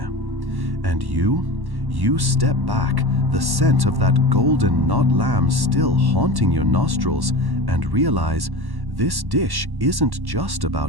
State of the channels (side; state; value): left; late; 1.1 ms